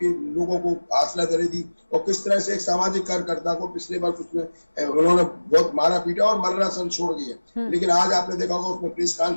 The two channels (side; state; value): both; inverted; correlation -1.00